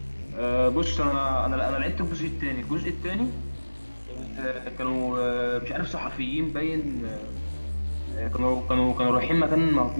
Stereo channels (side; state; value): both; inverted; correlation -1.00